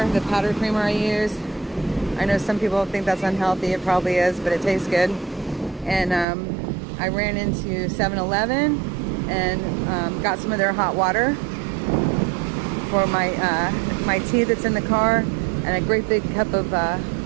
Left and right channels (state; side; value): drops out; left; at 6.2 s